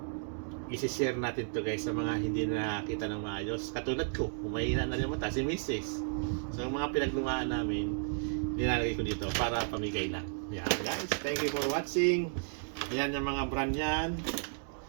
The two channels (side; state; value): left; silent; digital silence